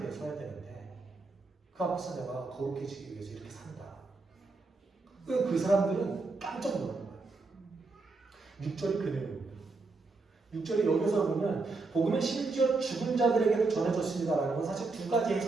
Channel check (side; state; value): left; quieter; 3.7 dB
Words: 서야 되는데 그 앞에서 내가 거룩해지기 위해서 이렇게 산다. 그 사람들은 깜짝 놀라는 거예요. 6절이 그 내용입니다. 6절이 여기서 보면 복음은 심지어 죽은 자들에게도 전해졌습니다라는 건 사실 두 가지